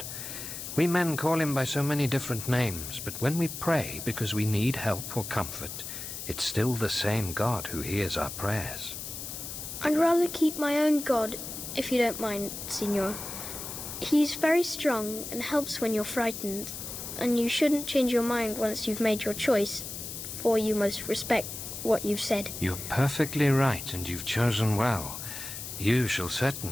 We men call him by so many different names, but when we pray because we need help or comfort, it's still the same God who hears our prayers. I'd rather keep my own god, if you don't mind, Signor. He's very strong and helps when you're frightened, and you shouldn't change your mind once you've made your choice, for you must respect what you've said. You're perfectly right, and you've chosen well. You shall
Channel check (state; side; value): noise; left; hiss, 8 dB below the sound